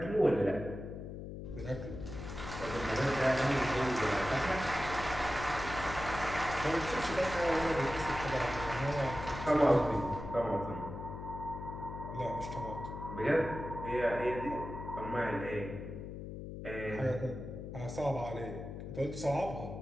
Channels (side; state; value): left; noise; hum, 8 dB below the sound